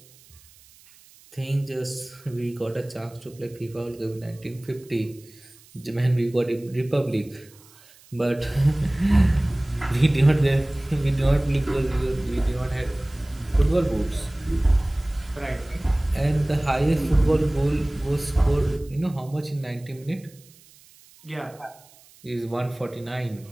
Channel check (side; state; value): right; noise; hiss, 26 dB below the sound